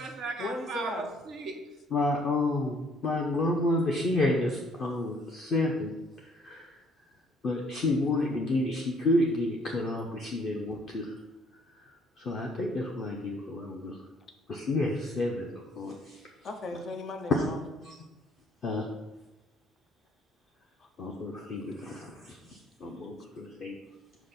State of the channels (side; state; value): both; normal; correlation 0.63